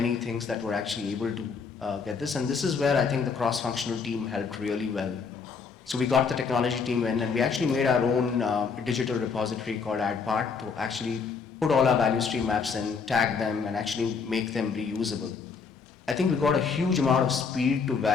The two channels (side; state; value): right; quieter; 5.5 dB